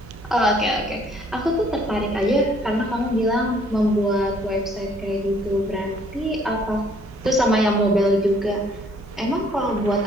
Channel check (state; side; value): noise; right; hum, 19 dB below the sound